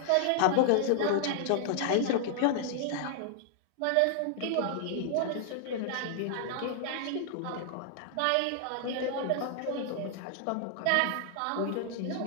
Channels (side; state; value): both; different; correlation -0.01